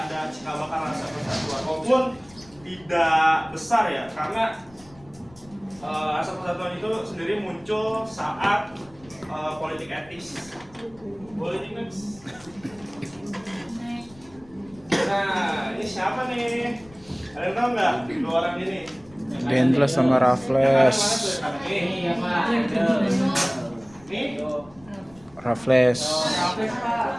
cikal bakal rasa persatuan, walaupun tidak besar ya, karena rasa persatuan itu sendiri muncul saat politik etis. Nah, ini siapa nih? Ada yang tahu nggak? Dua orang ini. Dendles sama Raffles. Ini ya Pak. Ini Raffles.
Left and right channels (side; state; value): left; noise; rumble, 25 dB below the sound